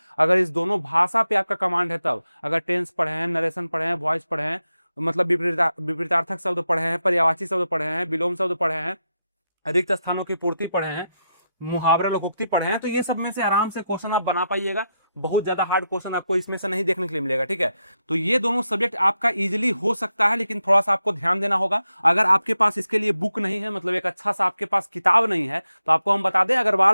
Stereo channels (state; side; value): inverted; both; correlation -0.86